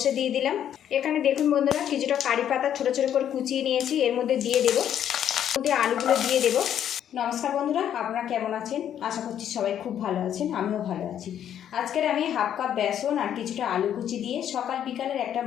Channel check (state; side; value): quieter; right; 9.9 dB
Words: দিয়ে দিলাম। এখানে দেখুন বন্ধুরা, কিছুটা কারি পাতা ছোট ছোট করে কুচিয়ে নিয়েছি, এর মধ্যে দিয়ে দেবো। মধ্যে আলুগুলো দিয়ে দেবো। নমস্কার বন্ধুরা, আপনারা কেমন আছেন? আশা করছি সবাই খুব ভালো আছেন, আমিও ভালো আছি। আজকের আমি হাফ কাপ বেসন আর কিছুটা আলু কুচি দিয়ে সকাল বিকালের একটা